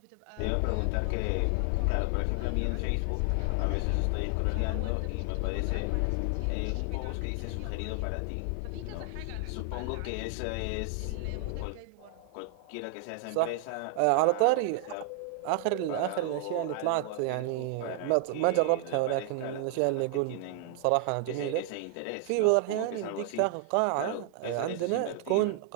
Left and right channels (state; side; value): different; both; correlation 0.00